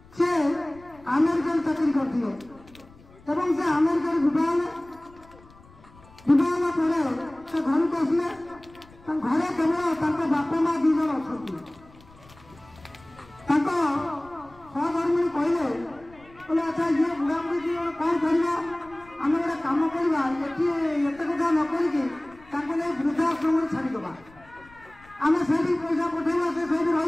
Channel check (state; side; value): noise; left; rumble, 25 dB below the sound